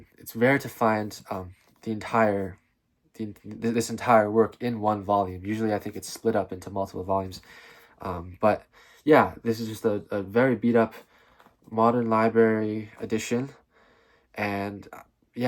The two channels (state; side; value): identical; both; correlation 1.00